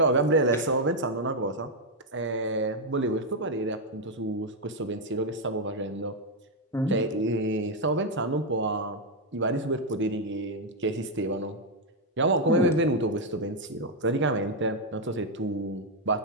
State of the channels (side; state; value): both; normal; correlation 0.01